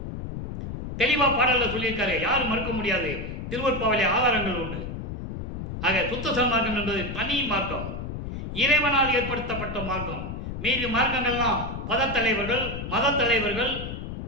தெளிவாக பாடலில் சொல்லியிருக்காரு, யாரும் மறுக்க முடியாது, திருவற்பாவிலே ஆதாரங்கள் உண்டு. ஆக சுத்த சன்மார்க்கம் என்பது தனி மார்க்கம், இறைவனால் ஏற்படுத்தப்பட்ட மார்க்கம். மீதி மார்க்கங்கள்லாம் பதத்தலைவர்கள், மத தலைவர்கள்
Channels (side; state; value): left; noise; rumble, 7 dB below the sound